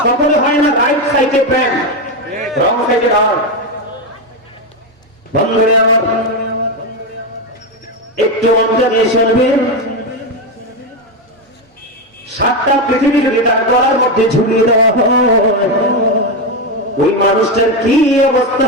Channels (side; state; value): both; normal; correlation 0.10